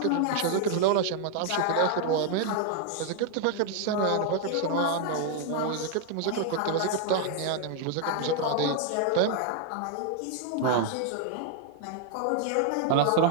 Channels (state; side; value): different; both; correlation 0.00